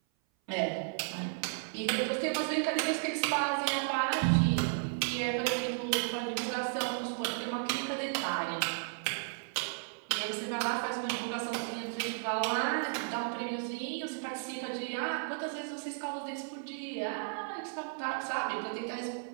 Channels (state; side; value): silent; left; 55 dB below the other